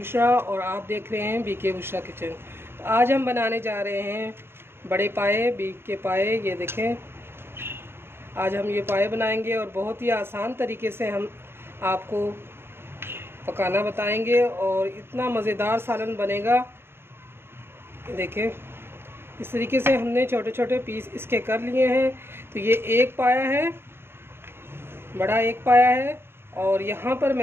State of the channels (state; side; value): late; left; 0.11 ms